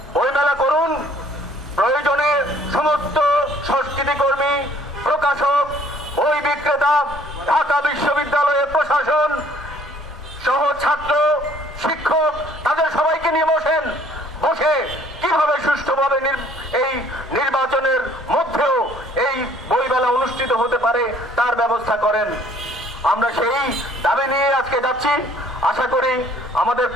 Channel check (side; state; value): both; normal; correlation 0.58